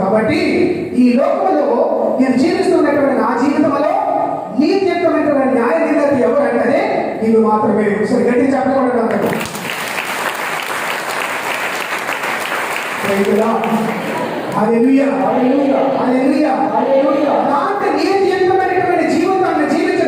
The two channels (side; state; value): both; identical; correlation 1.00